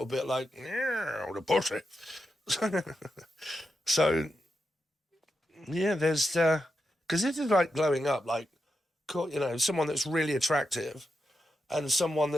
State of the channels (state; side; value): normal; both; correlation 0.87